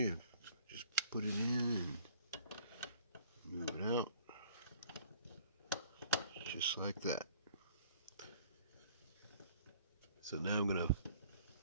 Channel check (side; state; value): both; inverted; correlation -0.54